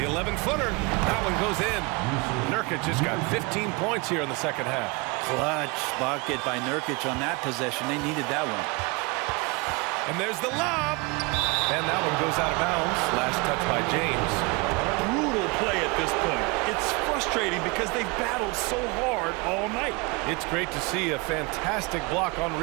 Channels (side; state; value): left; quieter; 27.7 dB